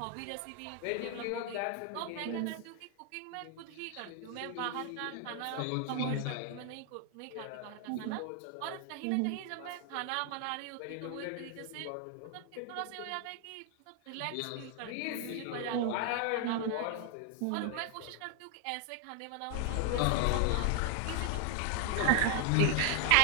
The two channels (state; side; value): different; both; correlation 0.00